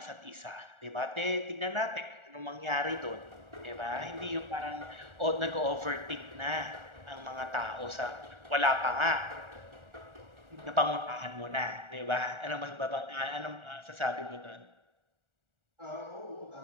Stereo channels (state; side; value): late; left; 1.4 ms